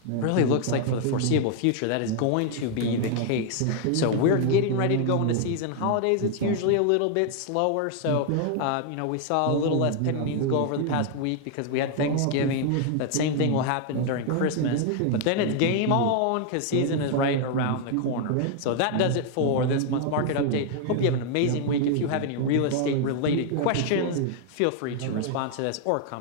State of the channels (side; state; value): both; different; correlation 0.00